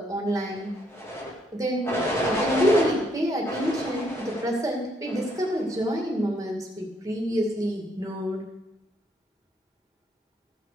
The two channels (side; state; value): both; normal; correlation 0.71